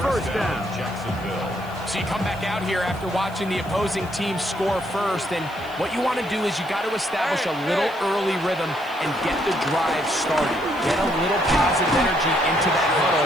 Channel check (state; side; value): noise; left; hiss, 24 dB below the sound